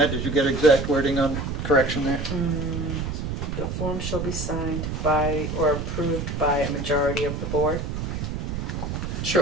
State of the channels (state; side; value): noise; right; rumble, 3 dB below the sound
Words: Did you get exact wording on correction there? The form shall be signed by or approved by a majority of the board.